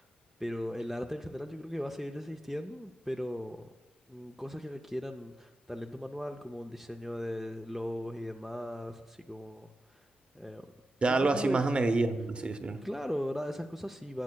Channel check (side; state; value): both; normal; correlation 0.91